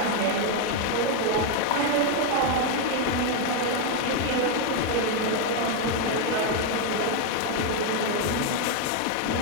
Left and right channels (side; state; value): both; different; correlation 0.01